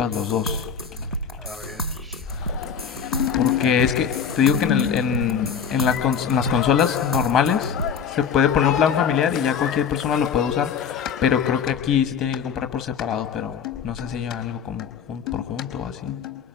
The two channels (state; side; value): quieter; right; 7.2 dB